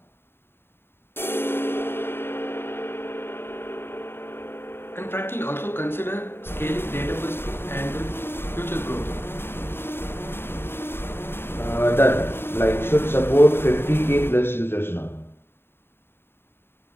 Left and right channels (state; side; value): late; right; 0.11 ms